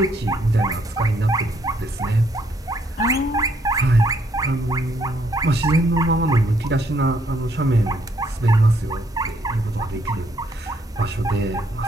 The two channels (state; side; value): normal; both; correlation 0.70